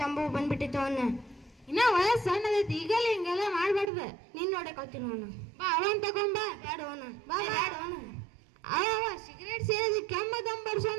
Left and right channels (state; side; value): drops out; left; at 3.9 s